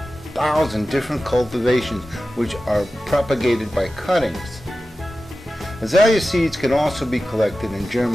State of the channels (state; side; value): normal; both; correlation 0.94